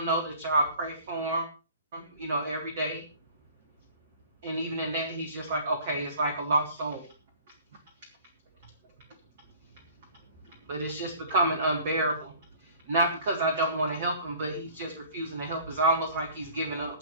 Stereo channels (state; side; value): inverted; both; correlation -0.50